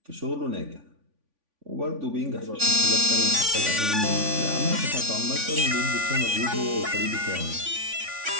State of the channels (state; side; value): late; left; 3.5 ms